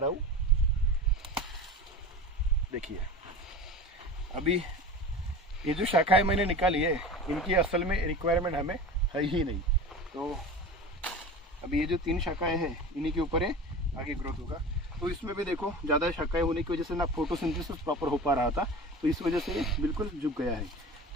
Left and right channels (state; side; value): normal; both; correlation 0.33